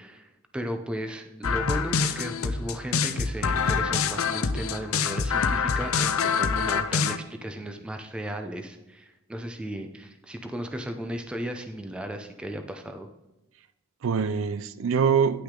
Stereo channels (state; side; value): normal; both; correlation 0.40